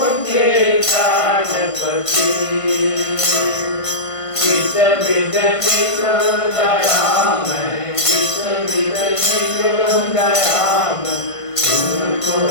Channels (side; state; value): right; late; 1.5 ms